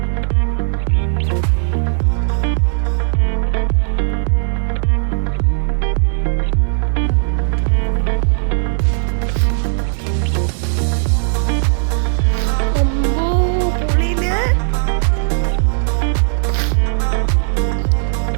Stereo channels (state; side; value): silent; left; digital silence